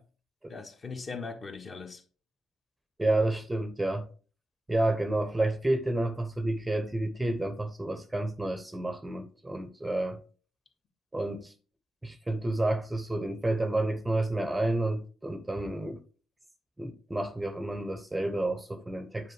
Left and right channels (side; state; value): both; normal; correlation 0.94